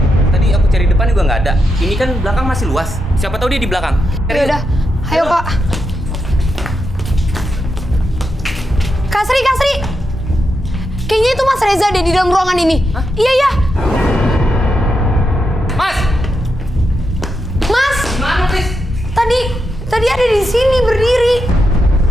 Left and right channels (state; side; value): normal; both; correlation 0.85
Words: Tadi aku cari depan juga nggak ada. Ini kan belakang masih luas. Siapa tahu dia di belakang. Ya udah, ayo Kak. Kak Sri. Kayaknya itu Mas Reza deh di dalam ruangan ini. Hah? Iya. Mas! Mas, Mana, Tris? tadi ada di sini berdiri.